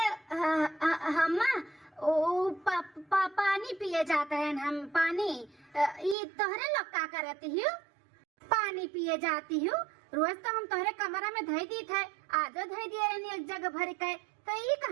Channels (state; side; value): drops out; left; at 6.2 s